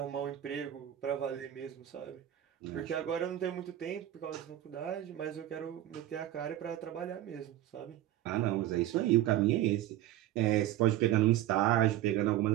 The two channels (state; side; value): quieter; left; 13.1 dB